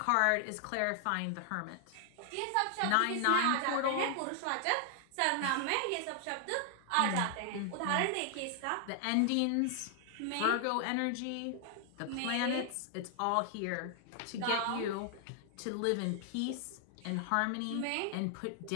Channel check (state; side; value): different; both; correlation 0.00